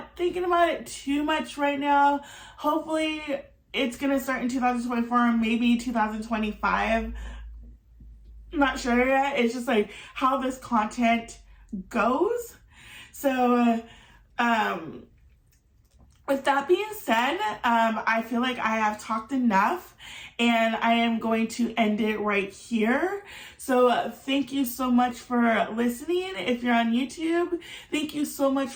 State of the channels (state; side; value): identical; both; correlation 1.00